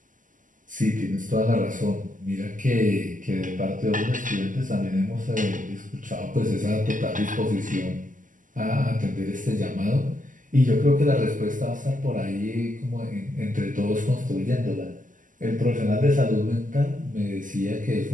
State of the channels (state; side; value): late; left; 0.38 ms